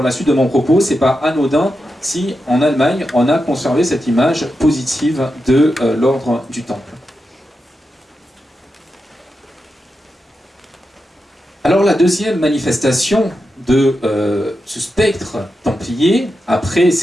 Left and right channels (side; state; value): both; normal; correlation 0.88